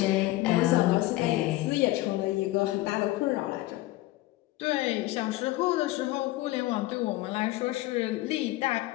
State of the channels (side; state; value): right; quieter; 17.8 dB